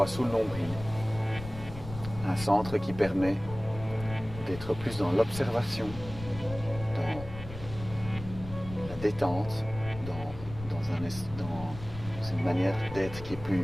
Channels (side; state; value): left; noise; rumble, 12 dB below the sound